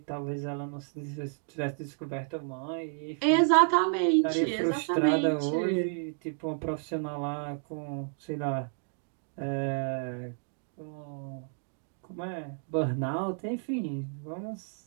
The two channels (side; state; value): left; silent; 57 dB below the other